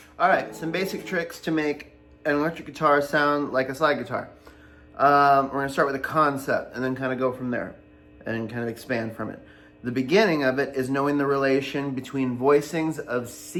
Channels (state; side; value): identical; both; correlation 1.00